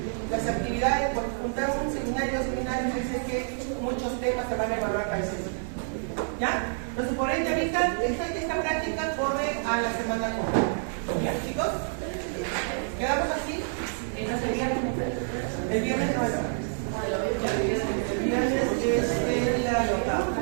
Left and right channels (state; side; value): silent; left; 59 dB below the other